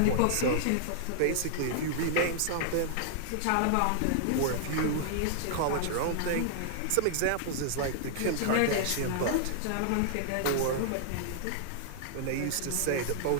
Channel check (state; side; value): different; both; correlation -0.01